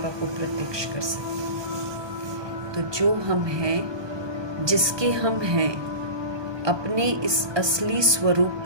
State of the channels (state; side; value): late; left; 1.2 ms